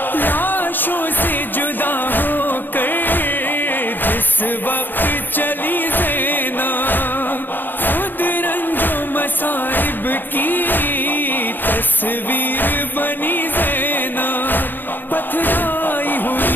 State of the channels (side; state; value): right; late; 0.091 ms